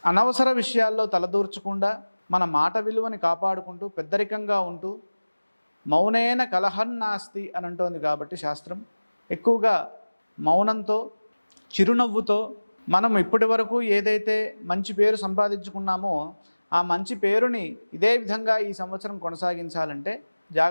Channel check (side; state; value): both; inverted; correlation -1.00